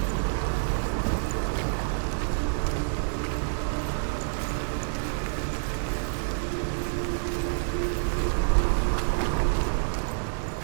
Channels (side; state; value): left; silent; digital silence